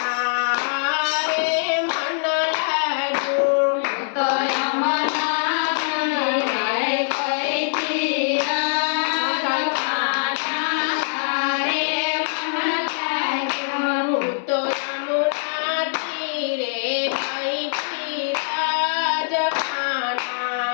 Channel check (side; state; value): right; silent; 64 dB below the other